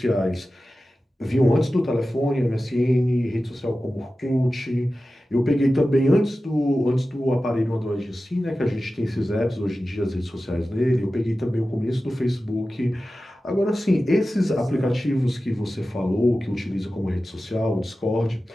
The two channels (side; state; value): both; normal; correlation 0.94